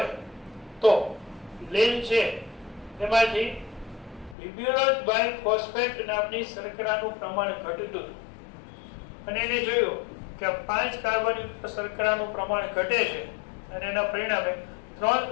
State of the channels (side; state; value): right; drops out; at 4.4 s